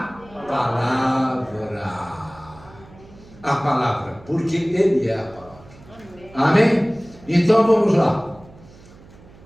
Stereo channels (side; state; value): right; noise; hum, 23 dB below the sound